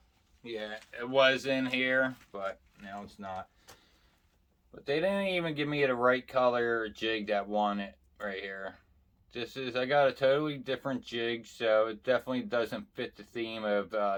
yeah, it was in here, but now it's not. But they didn't even give me the right color jig that won it right here. I got a totally different jig, so it definitely doesn't fit the theme of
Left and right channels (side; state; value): both; identical; correlation 1.00